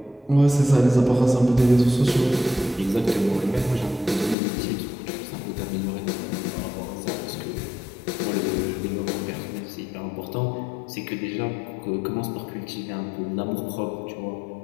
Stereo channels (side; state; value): right; drops out; at 4.4 s